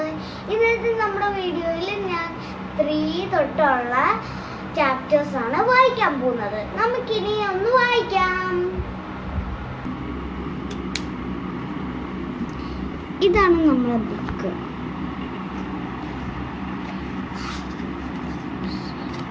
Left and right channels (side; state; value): both; identical; correlation 1.00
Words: ഇന്നത്തെ നമ്മുടെ വീഡിയോയിൽ ഞാൻ 3 തൊട്ടുള്ള ചാപ്റ്റേഴ്സ് ആണ് വായിക്കാൻ പോകുന്നത്. നമുക്കിനി ഒന്ന് വായിക്കാം. ഇതാണ് നമ്മുടെ ബുക്ക്.